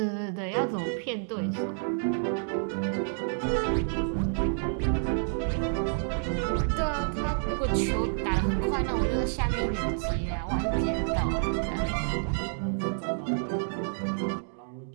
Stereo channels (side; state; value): left; silent; digital silence